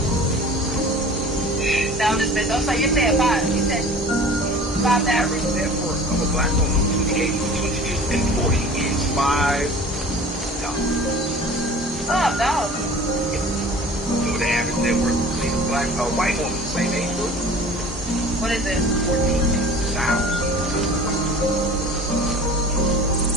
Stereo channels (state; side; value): normal; both; correlation 0.43